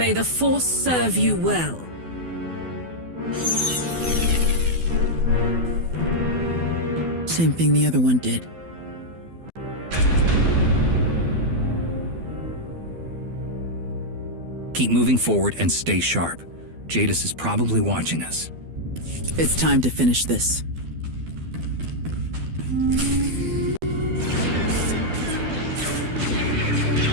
the Force serve you well. Same thing the other one did. Keep moving forward and stay sharp. Jadis is probably watching us. It's time to finish this.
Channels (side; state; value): left; late; 12 ms